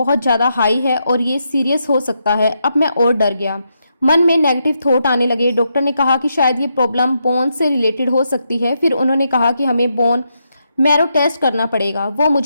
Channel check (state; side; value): inverted; both; correlation -0.82